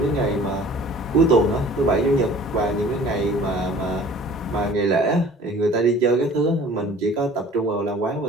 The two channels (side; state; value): both; normal; correlation 0.48